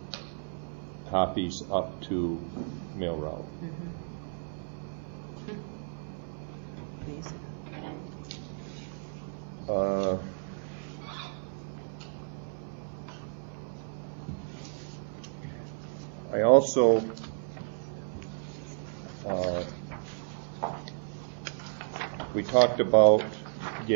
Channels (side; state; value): left; silent; 56 dB below the other